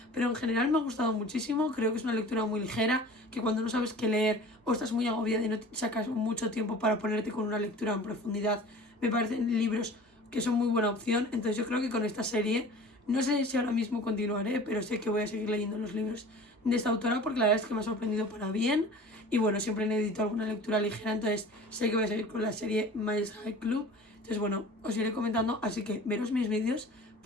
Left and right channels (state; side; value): normal; both; correlation 0.42